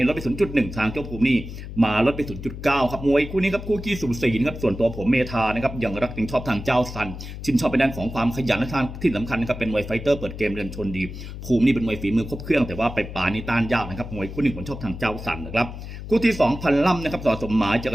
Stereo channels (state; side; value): noise; left; hum, 10 dB below the sound